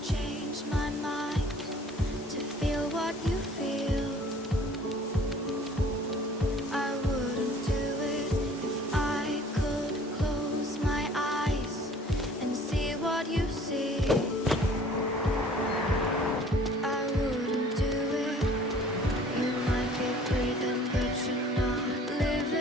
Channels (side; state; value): both; normal; correlation 0.52